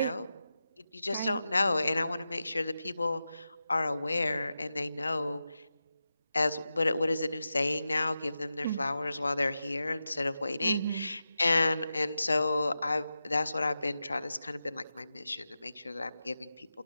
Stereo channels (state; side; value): inverted; both; correlation -0.92